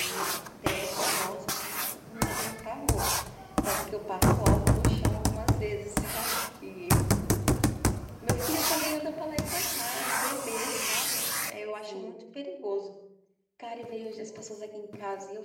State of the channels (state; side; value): identical; both; correlation 1.00